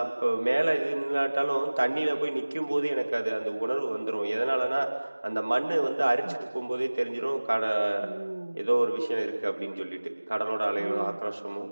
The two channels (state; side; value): inverted; both; correlation -1.00